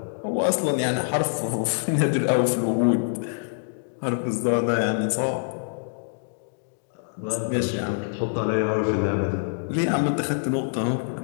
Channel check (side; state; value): right; silent; digital silence